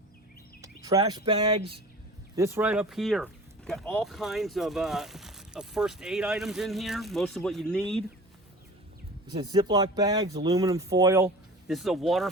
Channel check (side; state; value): both; normal; correlation 0.39